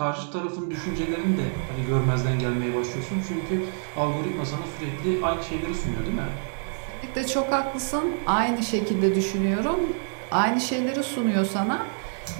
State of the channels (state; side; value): silent; left; 61 dB below the other